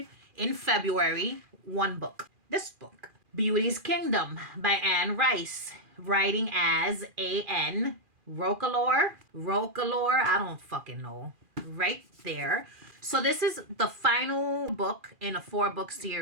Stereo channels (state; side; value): late; left; 2.4 ms